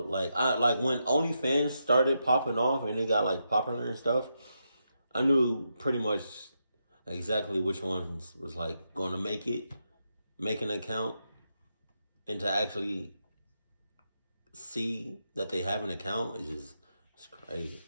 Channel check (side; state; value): both; inverted; correlation -0.84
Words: like when OnlyFans started popping off and they got like popular and stuff. I knew pretty much exactly which ones was like going to make an account, and to actually see that they have an account is it's crazy.